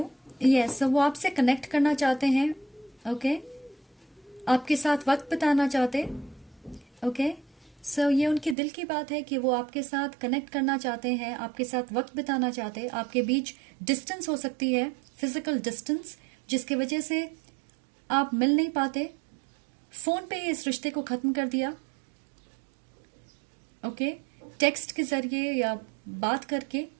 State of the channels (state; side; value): drops out; left; at 8.6 s